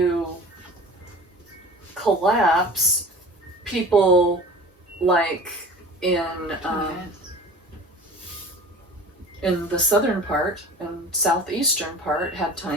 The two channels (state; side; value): normal; both; correlation 0.39